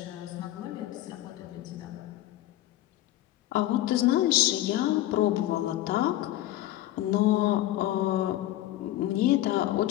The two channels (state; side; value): quieter; right; 14.5 dB